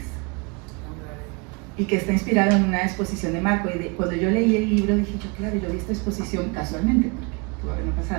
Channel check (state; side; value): quieter; left; 30.1 dB